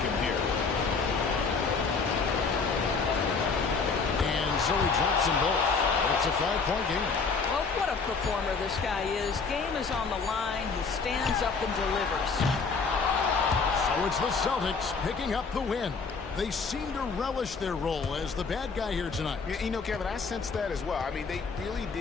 here. And so he drops them both. It's a 5-point game. Well, what a performer this guy is. Game is on the line. He stands up and delivers. So it's the Celtics picking up the win. They seem to relish their role as the bad guy here tonight. You know, Kevin, I sense that as well. I mean, they really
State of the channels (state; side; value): quieter; right; 4.9 dB